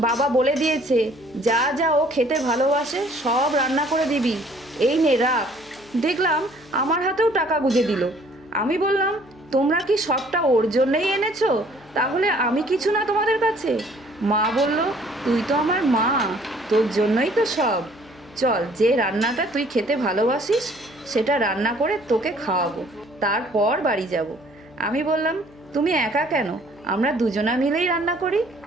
বাবা বলে দিয়েছে যা যা ও খেতে ভালোবাসে সব রান্না করে দিবি, এই নে রাখ। দেখলাম আমার হাতেও টাকা গুঁজে দিল। আমি বললাম, তোমরা কি সবটা ওর জন্যই এনেছো? তাহলে আমি কিছু না তোমাদের কাছে? মা বলল, তুই তো আমার মা, তোর জন্যই তো সব। চল, যে রান্নাটা তুই খেতে ভালোবাসিস সেটা রান্না করে তোকে খাওয়াবো, তারপর বাড়ি যাব। আমি বললাম, তুমি একা কেন, আমরা দুজনা মিলেই রান্না করি।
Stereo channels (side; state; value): left; noise; hum, 26 dB below the sound